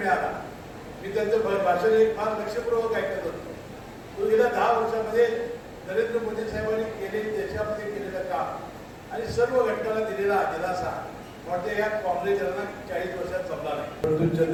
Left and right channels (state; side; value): identical; both; correlation 1.00